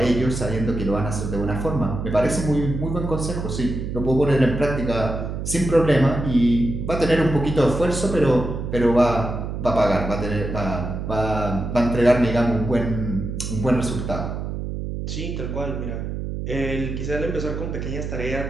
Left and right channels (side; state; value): right; noise; hum, 5 dB below the sound